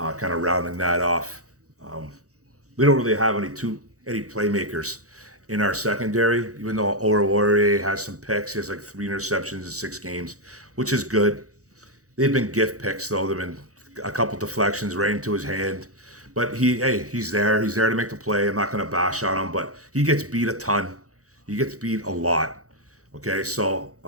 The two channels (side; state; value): left; late; 0.65 ms